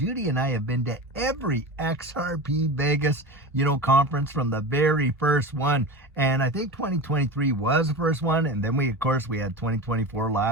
and I have been to every XRP Vegas, conference from the very first one. And I think 2023 was the first one. And then we had 2024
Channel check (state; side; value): normal; both; correlation 0.28